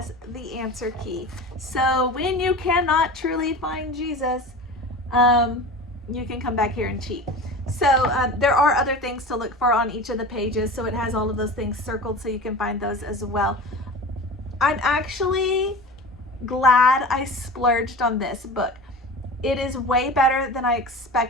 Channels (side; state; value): both; normal; correlation 0.33